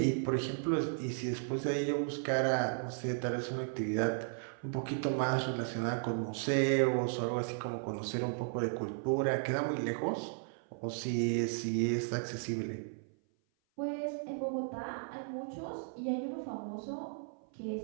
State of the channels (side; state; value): left; silent; 54 dB below the other